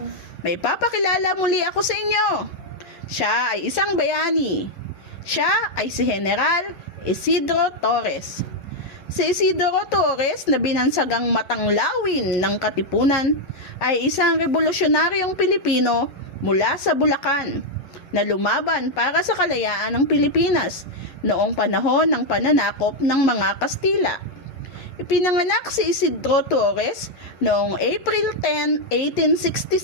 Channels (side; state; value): right; late; 11 ms